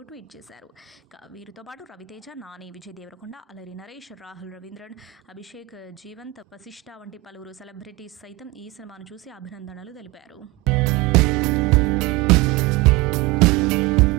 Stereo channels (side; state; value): left; quieter; 20.6 dB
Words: ట్వీట్ చేశారు. ఇక వీరితో పాటు రవితేజ, నాని, విజయ్ దేవరకొండ, అలరి నరేష్, రాహుల్ రవీంద్రన్, అభిషేక్ జీవంత్, వశిష్ఠ వంటి పలువురు సెలబ్రిటీస్ సైతం ఈ సినిమాను చూసి అభినందనలు తెలిపారు.